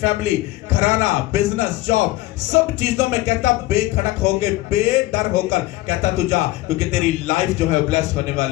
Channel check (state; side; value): quieter; right; 17.8 dB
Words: फैमिली, घराना, बिजनेस, जॉब, सब चीजों में कहता बेखड़क होकर, बेडर होकर कहता तू जा, क्योंकि तेरी लाइफ जो है ब्लेस होने